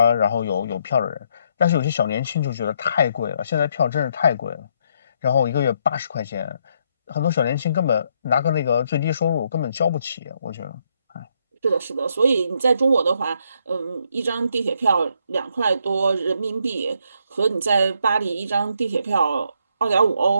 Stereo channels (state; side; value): inverted; both; correlation -0.74